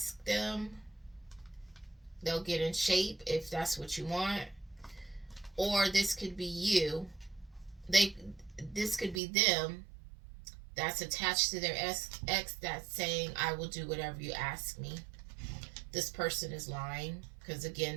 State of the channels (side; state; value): left; drops out; at 9.2 s